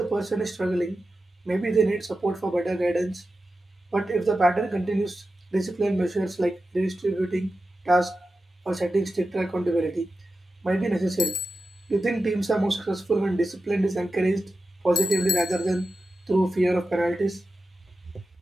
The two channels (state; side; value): normal; both; correlation 0.92